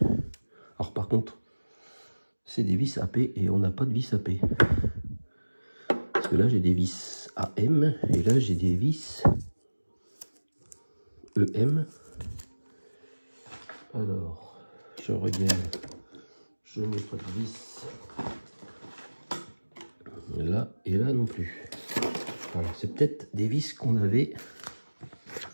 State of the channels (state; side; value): inverted; both; correlation -1.00